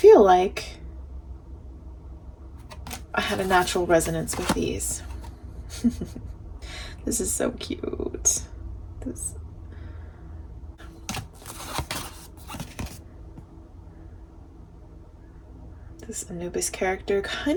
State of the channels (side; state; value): both; identical; correlation 1.00